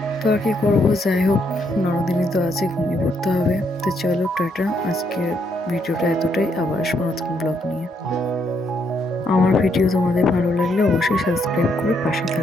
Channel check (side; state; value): both; normal; correlation 0.74